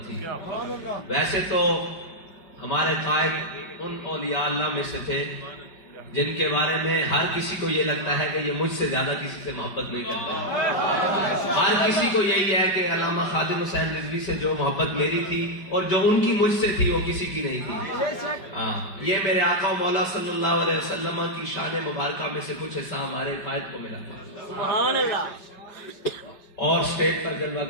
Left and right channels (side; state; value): right; late; 5.1 ms